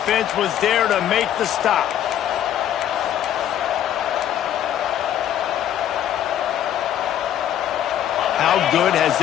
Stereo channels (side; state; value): right; quieter; 10.8 dB